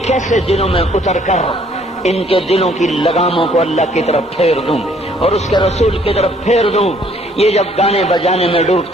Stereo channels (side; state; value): both; normal; correlation 0.62